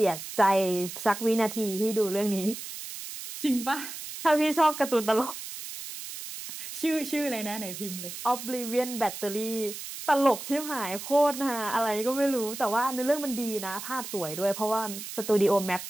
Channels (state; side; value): noise; right; hiss, 9 dB below the sound